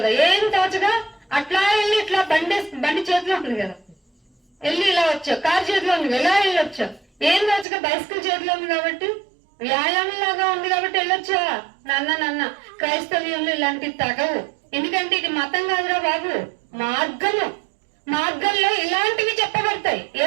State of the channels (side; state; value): left; drops out; at 7.7 s